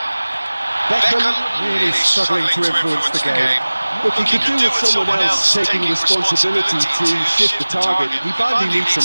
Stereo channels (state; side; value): inverted; both; correlation -1.00